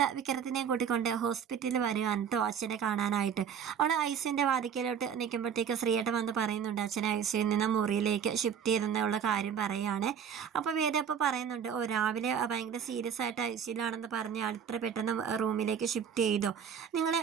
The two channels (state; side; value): quieter; left; 7.8 dB